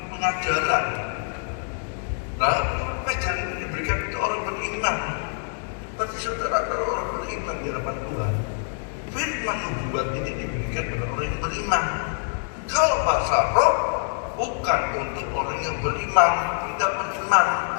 pengajaran. Nah, pengajaran diberikan untuk orang beriman. Berarti saudara kalau orang beriman di hadapan Tuhan, firman nubuat ini diberikan kepada orang yang beriman. Kalau bahasa roh bukan untuk orang yang beriman, tidak beriman.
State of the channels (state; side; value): silent; right; 56 dB below the other